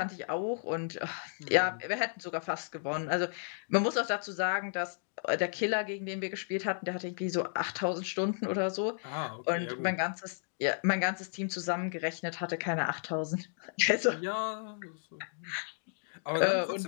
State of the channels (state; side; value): silent; right; digital silence